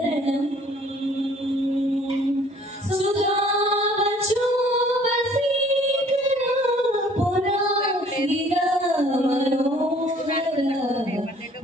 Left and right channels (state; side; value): normal; both; correlation 0.56